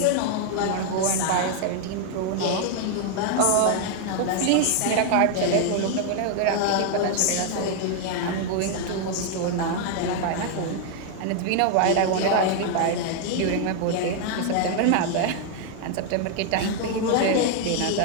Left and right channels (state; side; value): different; both; correlation 0.00